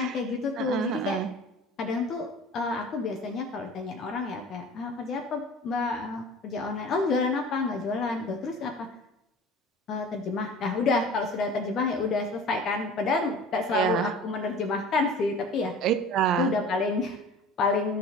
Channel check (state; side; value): normal; both; correlation 0.41